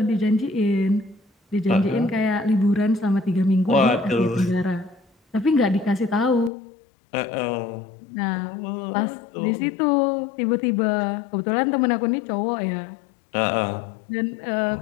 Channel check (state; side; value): drops out; right; at 6.5 s